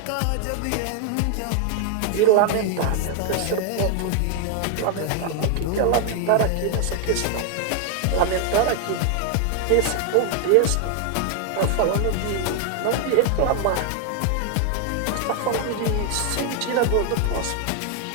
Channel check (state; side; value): different; both; correlation 0.00